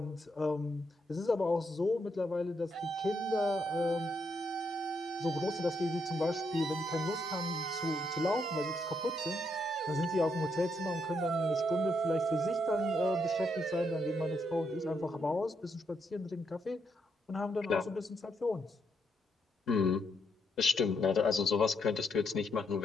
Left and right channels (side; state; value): both; normal; correlation 0.77